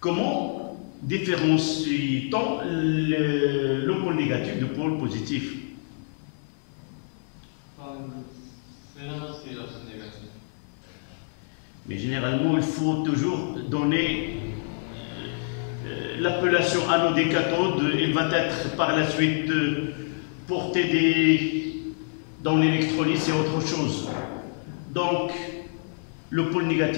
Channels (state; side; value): silent; right; 60 dB below the other